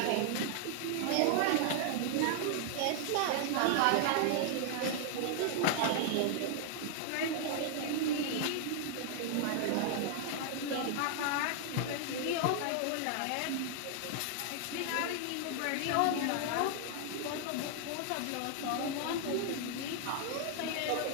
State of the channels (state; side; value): different; both; correlation 0.00